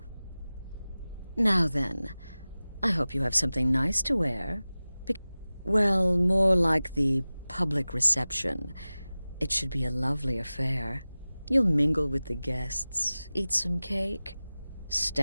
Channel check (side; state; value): both; inverted; correlation -0.97